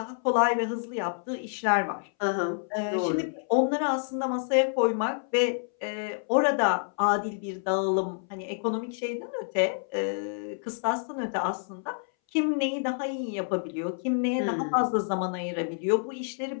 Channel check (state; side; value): silent; right; 59 dB below the other